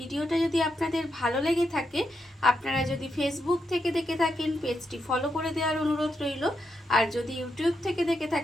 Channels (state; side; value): normal; both; correlation 0.83